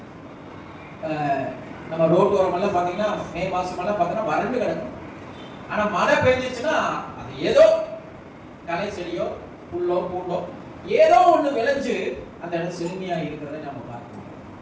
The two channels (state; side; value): identical; both; correlation 1.00